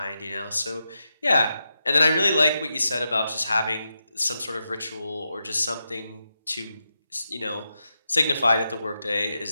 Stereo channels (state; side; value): inverted; both; correlation -0.87